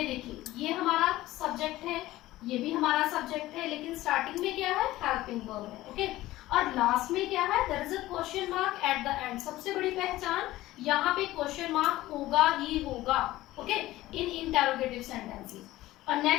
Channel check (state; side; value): quieter; right; 16.6 dB